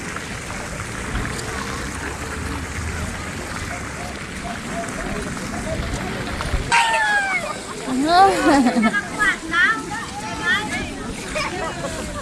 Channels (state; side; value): identical; both; correlation 1.00